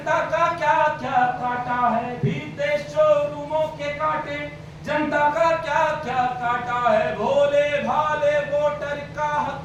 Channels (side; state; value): both; identical; correlation 1.00